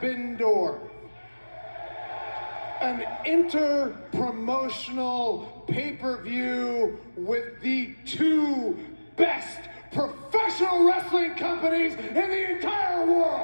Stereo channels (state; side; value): inverted; both; correlation -1.00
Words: Door, an inter-promotional pay-per-view with the two best professional wrestling companies in the entire